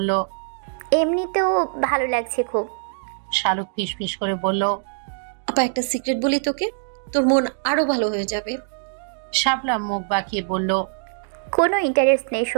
এমনিতেও ভালো লাগছে খুব। শালুক ফিসফিস করে বলল, আপা একটা সিক্রেট বলি তোকে, তোর মন আরো ভালো হয়ে যাবে। শাপলা মুখ বাঁকিয়ে বলল, কোনো ইন্টারেস্ট নেই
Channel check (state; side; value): silent; left; digital silence